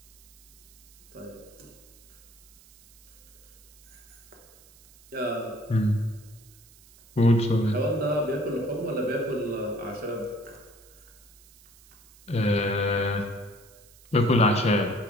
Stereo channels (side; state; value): right; noise; hiss, 26 dB below the sound